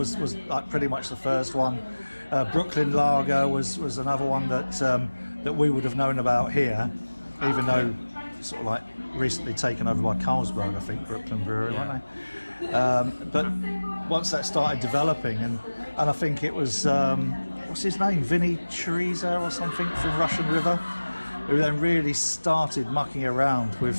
like pretty much the first one. Brooklyn Lager was another one that we would have known about here, even though sort of like recently taken over by Carlsberg, I think, Brooklyn Brewery, weren't they? But once that started developing, and I think it was what's his name, Vinny Chorizo or something from Russian River, who then really started mucking around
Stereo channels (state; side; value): inverted; both; correlation -1.00